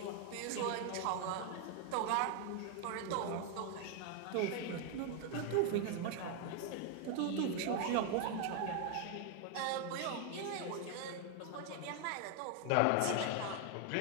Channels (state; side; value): different; both; correlation 0.00